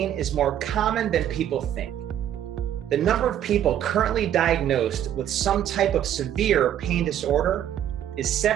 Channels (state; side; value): quieter; left; 10.7 dB